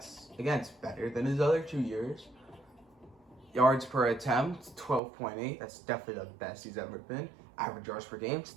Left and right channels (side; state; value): left; drops out; at 5.0 s